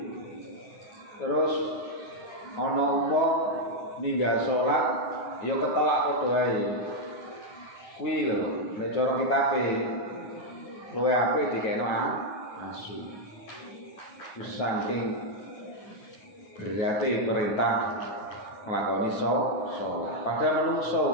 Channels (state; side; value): late; right; 9.3 ms